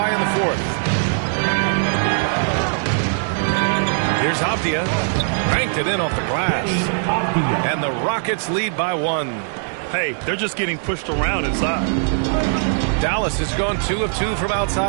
in the fourth. Here's Avdia. Banked it in off the glass. And the Rockets lead by 1. Hey, they're just getting pushed around inside. Dallas has gone 2 of 2 from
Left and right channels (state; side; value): silent; left; digital silence